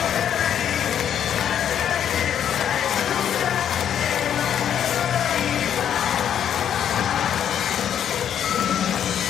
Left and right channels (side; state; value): right; quieter; 9.4 dB